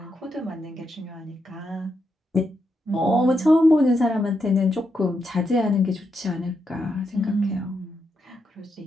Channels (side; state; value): both; normal; correlation 0.83